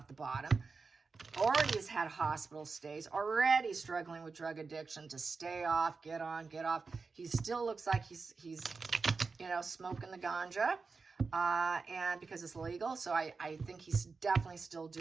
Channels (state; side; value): quieter; left; 4.5 dB